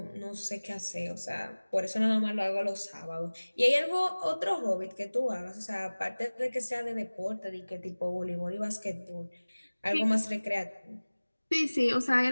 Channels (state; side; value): inverted; both; correlation -1.00